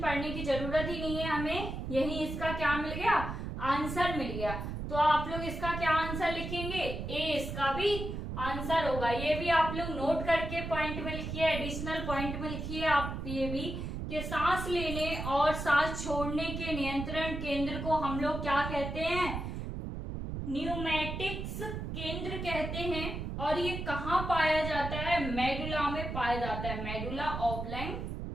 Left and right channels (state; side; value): noise; right; rumble, 5 dB below the sound